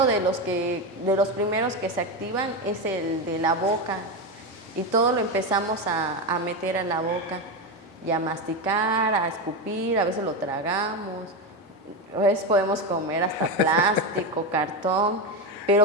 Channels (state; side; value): normal; both; correlation 0.14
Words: de los primeros que se activan es el de la boca. Y todo lo empezamos a meter a la boca y a masticar, a escupir, a veces lo tragamos, a veces podemos comer hasta plástico, cartón.